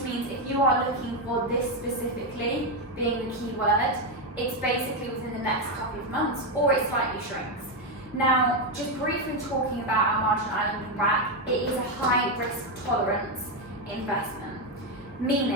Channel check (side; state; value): both; normal; correlation 0.06